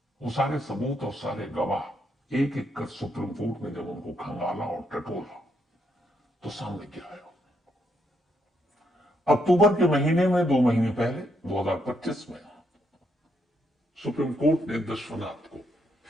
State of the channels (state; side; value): normal; both; correlation 0.76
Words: वो सारे सबूत और सारे गवाह एक एक कर सुप्रीम कोर्ट ने जब उनको खंगाला और टटोला तो सामने क्या आया। अक्टूबर के महीने में 2 महीने पहले 2025 में सुप्रीम कोर्ट ने दशरनाथ को